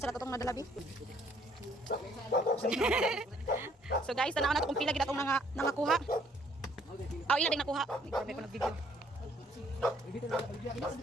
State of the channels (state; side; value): normal; both; correlation 0.63